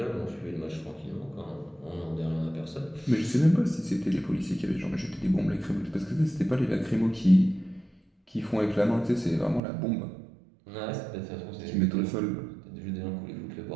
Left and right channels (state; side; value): drops out; left; at 9.6 s